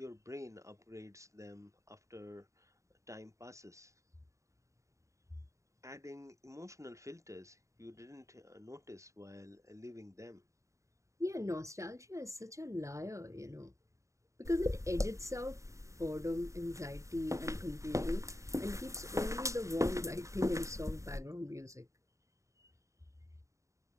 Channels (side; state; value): left; late; 0.15 ms